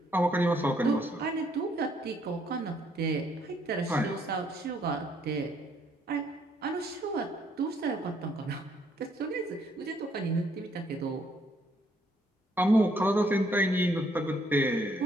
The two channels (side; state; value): both; normal; correlation 0.69